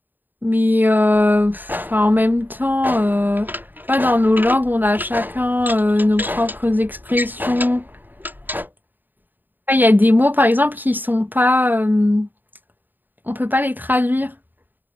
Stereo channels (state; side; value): late; left; 0.090 ms